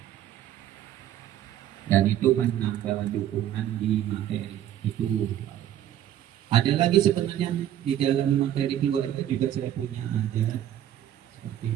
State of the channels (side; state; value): left; quieter; 11.5 dB